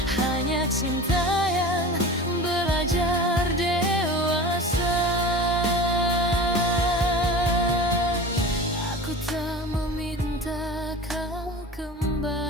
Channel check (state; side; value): normal; both; correlation 0.34